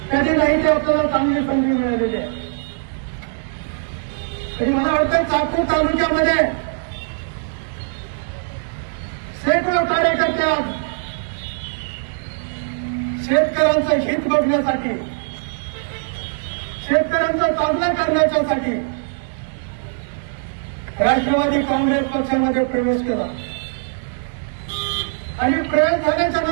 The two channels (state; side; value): silent; left; digital silence